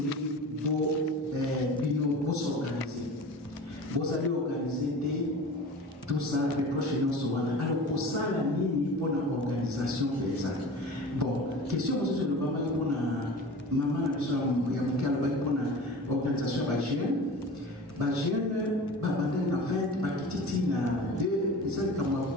pour s'organiser. Vous allez organiser tout ça, les prochaines semaines. Alors pour ça, la ligne pour l'organisation des ça. Bon, question sur le maman pour la maman pour l'organisation Bagien. Bagien, Babandé en fait, Bakititi na deux, ils ont comme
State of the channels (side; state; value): both; normal; correlation 0.37